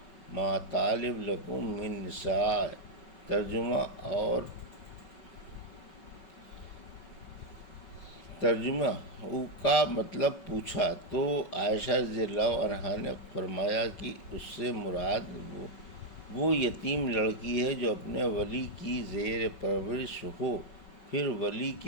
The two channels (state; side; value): late; right; 5.3 ms